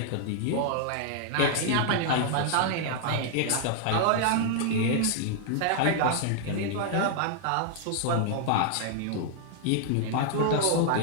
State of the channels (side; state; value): both; different; correlation 0.00